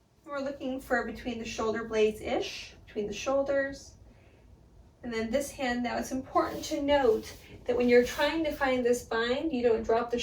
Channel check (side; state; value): both; identical; correlation 1.00